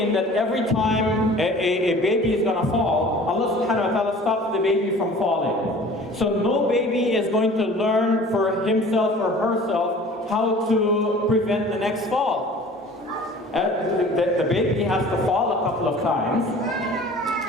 that every time a baby is going to fall, Allah subhanahu wa ta'ala stops the baby from falling. So no baby is going to learn for himself or herself how to prevent the next fall. The baby has to fall a couple of times.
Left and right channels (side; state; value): both; normal; correlation 0.46